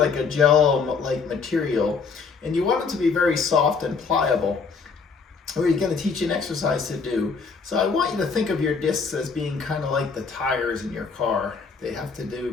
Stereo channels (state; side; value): quieter; right; 5.1 dB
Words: a gel-like material, and you want it to be very soft and pliable. We're going to teach you an exercise to do. So I want you to think of your discs as being kind of like the tires in your car. They have to do